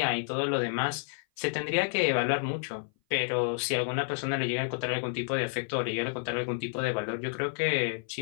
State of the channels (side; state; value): right; silent; 55 dB below the other